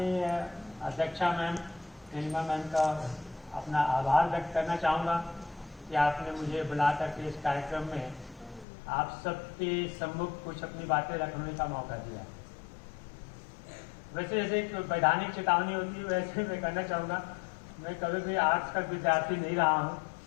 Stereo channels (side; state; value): right; drops out; at 8.7 s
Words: अध्यक्षा मैम नीलिमा मैम का अपना आभार व्यक्त करना चाहूँगा कि आपने मुझे बुला करके इस कार्यक्रम में आप सबके सम्मुख कुछ अपनी बातें रखने का मौका दिया। वैसे जैसे एक वैधानिक चेतावनी होती है वैसे मैं कहना चाहूँगा, मैं कभी भी आर्ट्स का विद्यार्थी नहीं रहा हूँ,